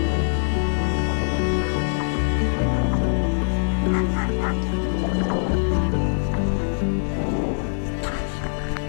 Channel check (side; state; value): right; silent; digital silence